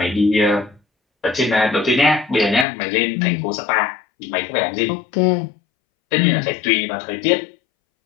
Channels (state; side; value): drops out; right; at 2.7 s